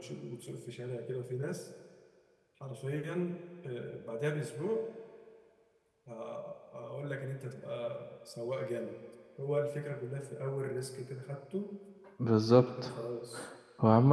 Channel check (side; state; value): both; identical; correlation 1.00